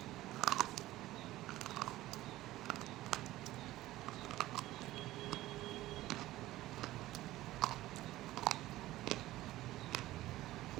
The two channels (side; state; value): left; quieter; 16.2 dB